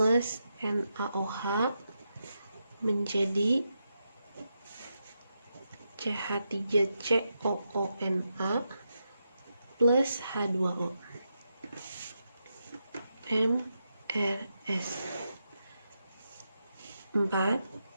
NaOH menjadi CH3COONa plus H2O. MRS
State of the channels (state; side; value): inverted; both; correlation -0.85